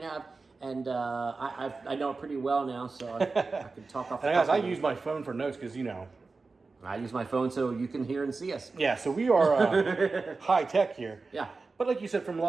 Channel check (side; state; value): left; quieter; 4.0 dB